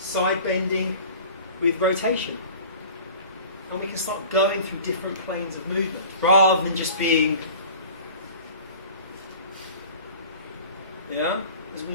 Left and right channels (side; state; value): both; inverted; correlation -0.43